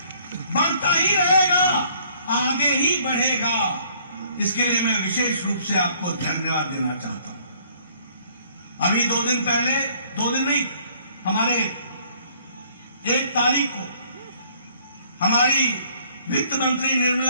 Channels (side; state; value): both; inverted; correlation -0.60